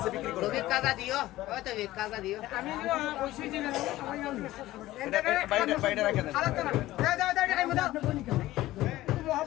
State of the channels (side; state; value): right; quieter; 16.3 dB